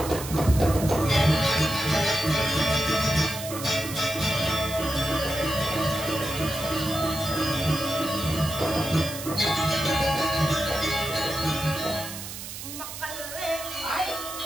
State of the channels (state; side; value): noise; right; hiss, 10 dB below the sound